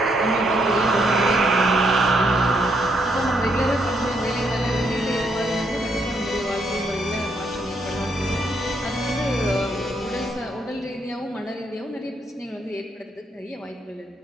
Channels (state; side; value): normal; both; correlation 0.75